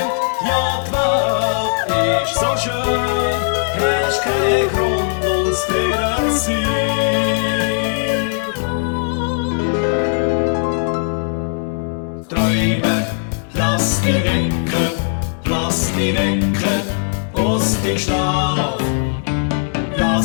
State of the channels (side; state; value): right; silent; 67 dB below the other